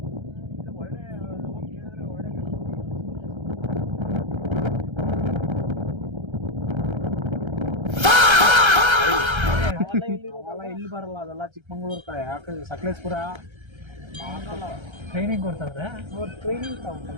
ಒಳ್ಳೆ ಕೇಳಿದ್ರೆ ಒಳ್ಳೆ ಇಲ್ಲಿ ಬರಲ್ಲ, ಅದೆಲ್ಲ ಚಿಕ್ಕಮಂಗ್ಳೂರ್ ಕಡೆ. ಯಾಕಂದ್ರೆ ಸಕಲೇಶ್ಪುರ ಟ್ರೈನಿಂಗ್ ಕೊಡ್ತಾರೆ. ಟ್ರೈನಿಂಗ್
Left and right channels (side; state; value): left; late; 1.3 ms